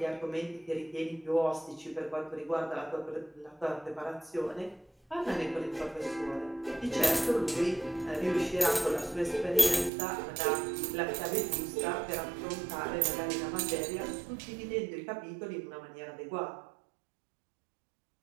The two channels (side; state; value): left; drops out; at 9.9 s